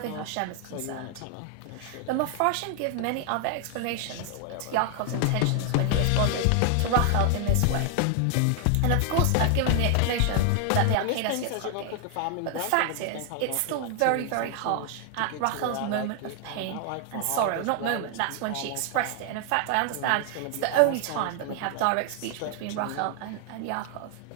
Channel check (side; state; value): both; different; correlation 0.00